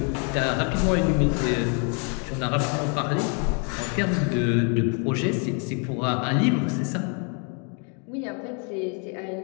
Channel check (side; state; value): right; quieter; 38.6 dB